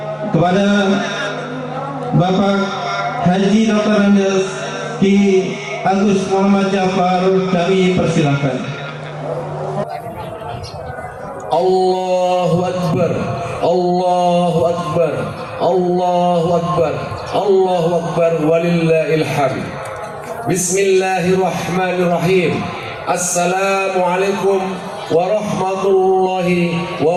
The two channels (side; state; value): both; identical; correlation 1.00